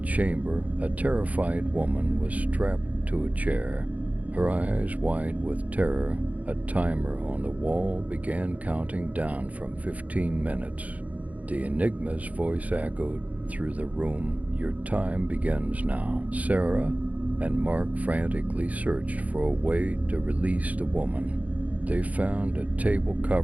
a terrified woman was strapped to a chair, her eyes wide with terror. A timer on the wall began counting down from 15 minutes. The Enigma's voice echoed through the room: "Your time begins now." Sarah and Mark frantically searched for a way to release the woman. They found a table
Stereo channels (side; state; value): left; late; 0.072 ms